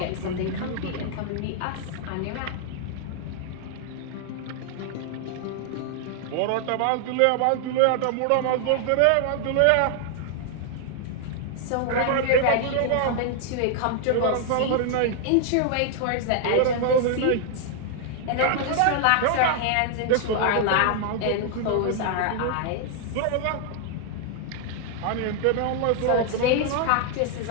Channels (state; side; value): different; both; correlation 0.00